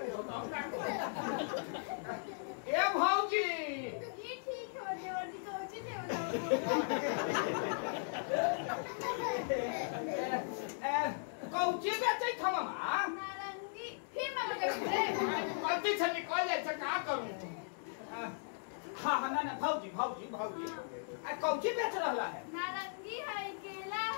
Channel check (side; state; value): right; silent; digital silence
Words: ए भौजी, ये ठीक है, वर्दी कोची थे बताओ। कौची बेचै था मामा? नारंगी फिर मामा के रे। गलती से निकल जाए तो का करूं? हाँ ना भौजी कौची बेच रहा है? नारंगी है, केला